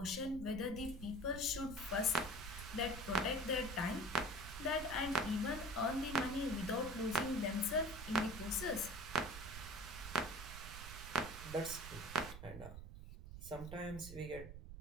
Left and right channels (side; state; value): right; noise; rumble, 11 dB below the sound